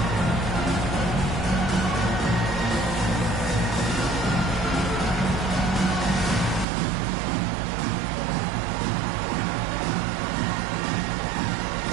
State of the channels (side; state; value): left; drops out; at 6.7 s